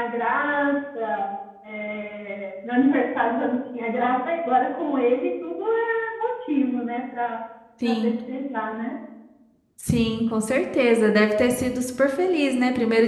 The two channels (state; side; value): identical; both; correlation 1.00